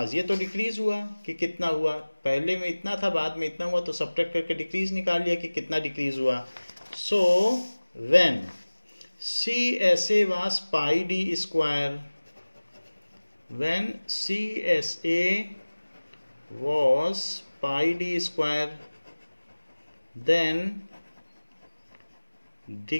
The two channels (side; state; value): both; inverted; correlation -1.00